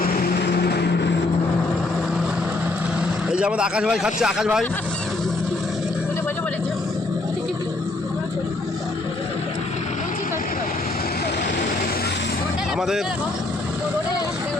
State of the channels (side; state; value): right; quieter; 3.0 dB